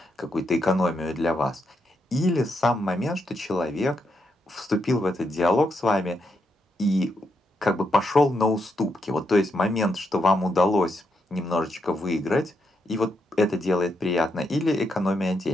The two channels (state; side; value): normal; both; correlation 0.81